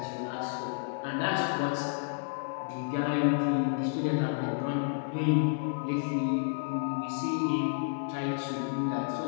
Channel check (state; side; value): silent; right; digital silence